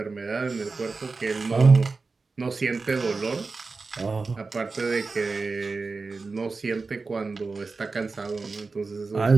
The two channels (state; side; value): quieter; left; 4.1 dB